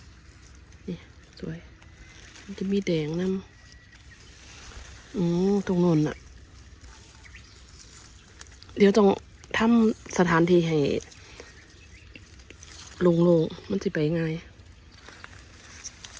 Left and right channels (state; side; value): identical; both; correlation 1.00